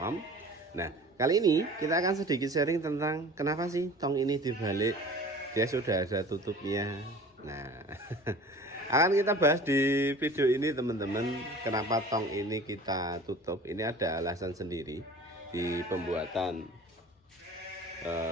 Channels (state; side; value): normal; both; correlation 0.43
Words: Nah, kali ini kita akan sedikit sharing tentang kenapa sih tong ini dibalik. Dia sudah ada tutupnya. Nah, akan kita bahas di video ini teman-teman. Kenapa tong ini kita tutup? Ini ada alasan sendiri di pembuatan